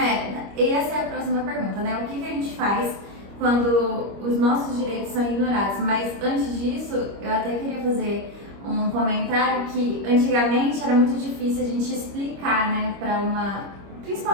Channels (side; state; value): left; late; 25 ms